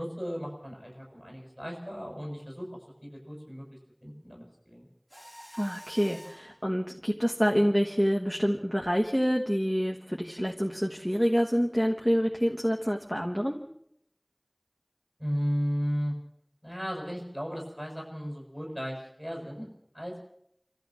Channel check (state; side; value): identical; both; correlation 1.00